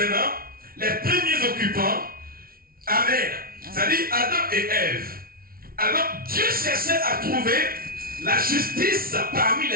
les premiers occupants. Amen. C'est-à-dire Adam et Ève. Alors Dieu cherchait à trouver la justice parmi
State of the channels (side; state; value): left; late; 0.43 ms